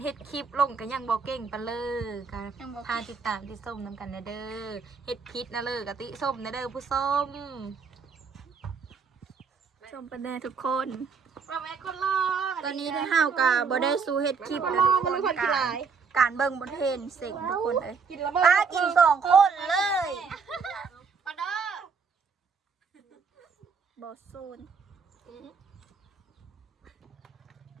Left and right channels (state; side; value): quieter; left; 5.5 dB